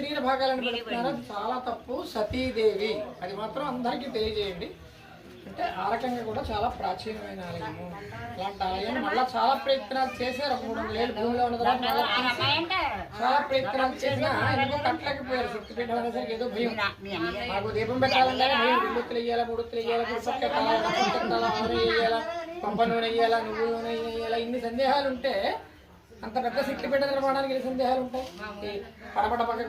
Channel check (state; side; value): identical; both; correlation 1.00